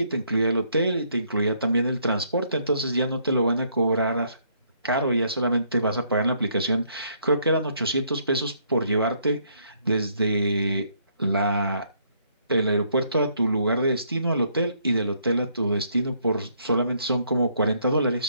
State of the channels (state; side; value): inverted; both; correlation -0.69